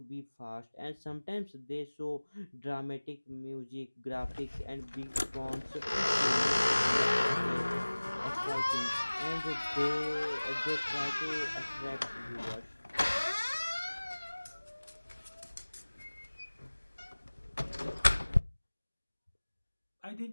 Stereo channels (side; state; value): both; inverted; correlation -1.00